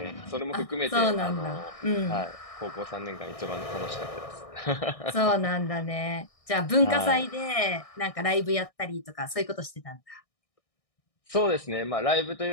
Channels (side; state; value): right; late; 1.6 ms